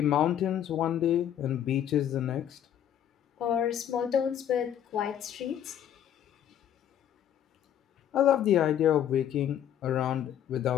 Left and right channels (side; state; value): right; quieter; 10.2 dB